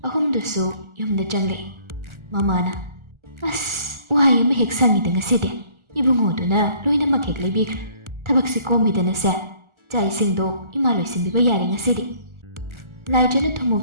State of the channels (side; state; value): left; late; 1.4 ms